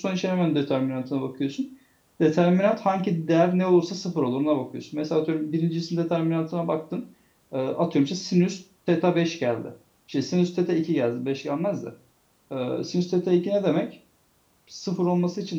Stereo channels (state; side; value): identical; both; correlation 1.00